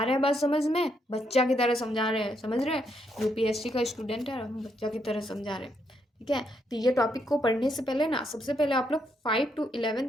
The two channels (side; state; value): both; normal; correlation 0.77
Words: रहा है बात समझ में? बच्चा की तरह समझा रहे हैं, समझ रहे हैं? यूपीएससी का स्टूडेंट है, हम बच्चा की तरह समझा रहे हैं। ठीक है, तो ये टॉपिक को पढ़ने से पहले ना सबसे पहले आप लोग 5 to 11